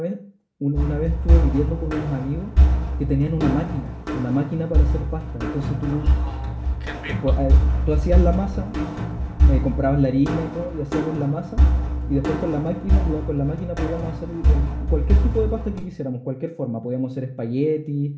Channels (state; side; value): identical; both; correlation 1.00